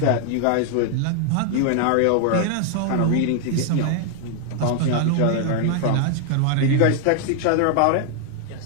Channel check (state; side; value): different; both; correlation 0.00